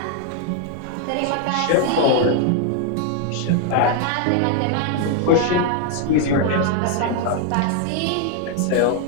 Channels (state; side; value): different; both; correlation 0.00